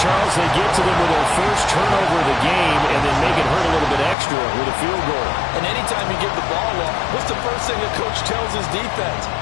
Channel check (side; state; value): right; drops out; at 4.2 s